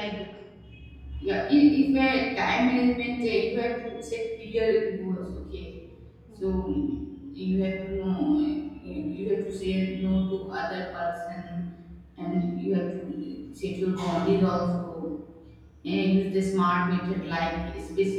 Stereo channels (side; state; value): both; identical; correlation 1.00